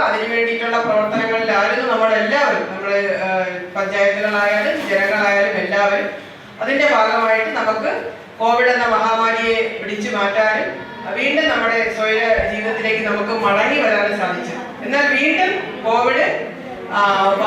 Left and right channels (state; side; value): identical; both; correlation 1.00